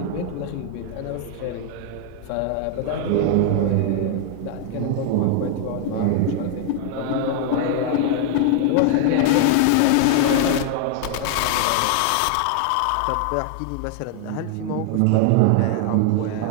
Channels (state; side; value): different; both; correlation 0.00